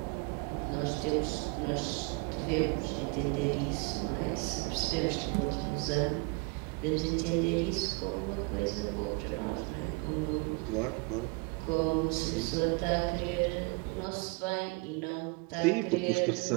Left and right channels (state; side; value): quieter; left; 29.3 dB